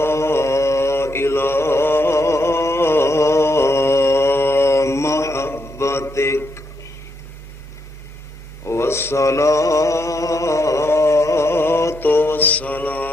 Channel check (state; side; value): normal; both; correlation 0.79